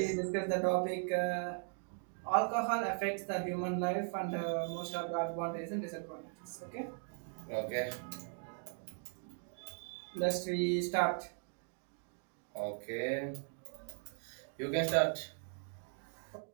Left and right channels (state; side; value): silent; left; 52 dB below the other